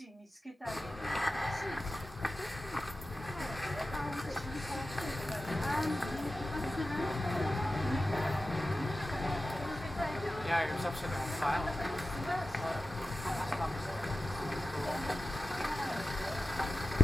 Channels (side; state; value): both; normal; correlation 0.93